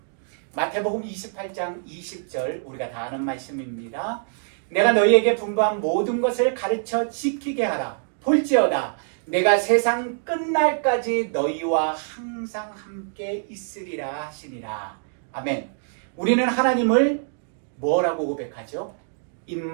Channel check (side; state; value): left; silent; digital silence